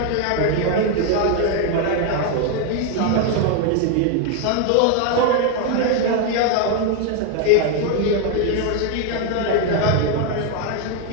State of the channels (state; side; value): different; both; correlation 0.01